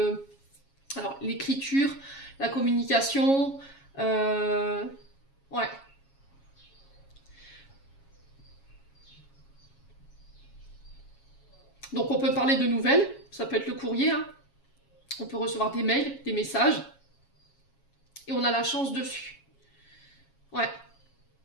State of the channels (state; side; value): late; right; 7.3 ms